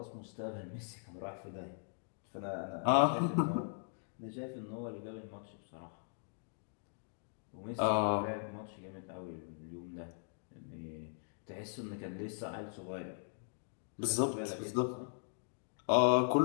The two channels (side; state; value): right; silent; digital silence